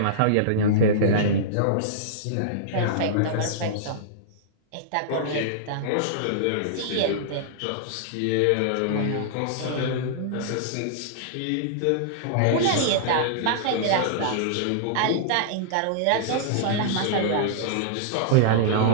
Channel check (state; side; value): different; both; correlation -0.02